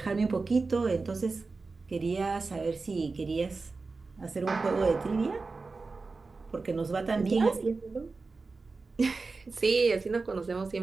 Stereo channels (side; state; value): left; quieter; 4.0 dB